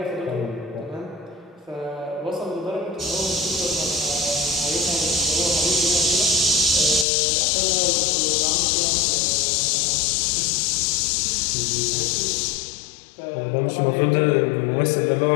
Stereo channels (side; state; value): right; drops out; at 7.1 s